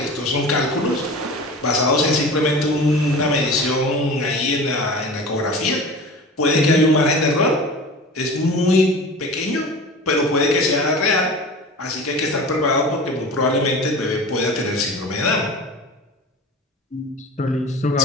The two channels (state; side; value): normal; both; correlation 0.35